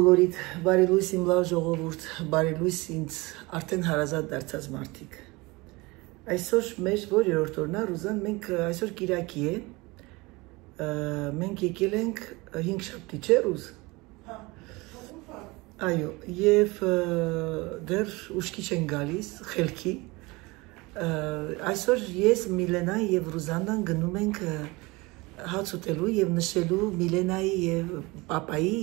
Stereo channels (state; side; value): quieter; left; 23.8 dB